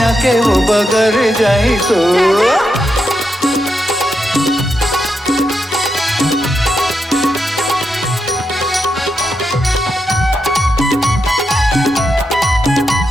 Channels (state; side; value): normal; both; correlation 0.84